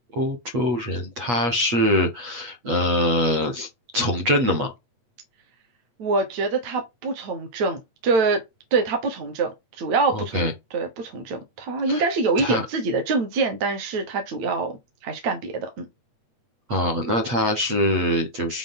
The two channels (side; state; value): left; late; 8.4 ms